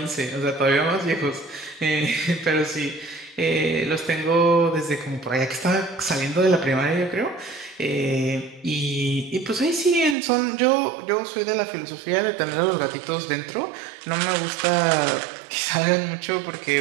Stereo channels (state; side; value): drops out; left; at 10.2 s